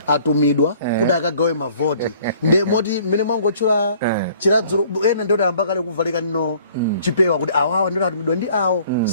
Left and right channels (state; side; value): inverted; both; correlation -0.56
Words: atumidwa kuti akagawe mavoti. Nde moti mene mwangotchula chiradzulu ena ndoti amba kale kuvalika nino chipewa kuti awawa ndoti atumidwa ndi awo